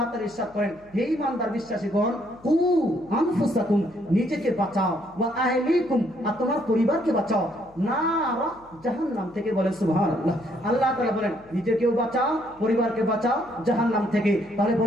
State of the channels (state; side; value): noise; left; hum, 28 dB below the sound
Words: তাআলা ইরশাদ করেন হে ঈমানদার বিশ্বাসীগণ, কু আনফুসাকুম, নিজেকে বাঁচাও, ওয়া আহলিকুম, আর তোমার পরিবারকে বাঁচাও, নারা, জাহান্নাম থেকে। বলেন সুবহানাল্লাহ। আল্লাহ তাআলা বলেন নিজেকেও বাঁচাও, পরিবারকে বাঁচাও জাহান্নাম থেকে। তাহলে